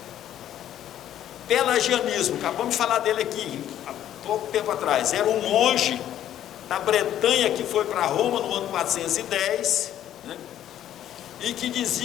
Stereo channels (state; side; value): quieter; right; 11.4 dB